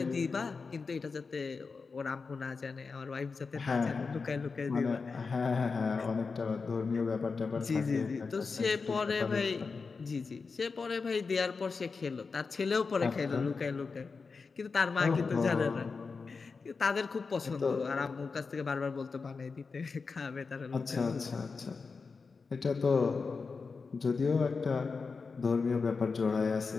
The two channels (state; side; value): quieter; right; 4.7 dB